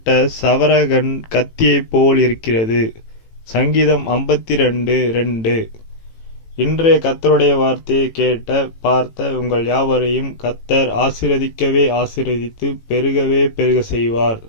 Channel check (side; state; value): right; late; 18 ms